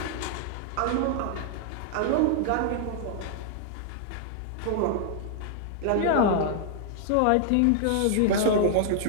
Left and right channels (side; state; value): both; different; correlation -0.01